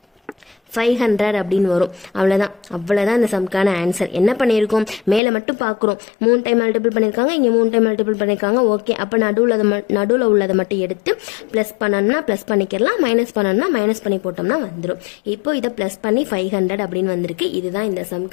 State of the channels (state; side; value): drops out; right; at 5.2 s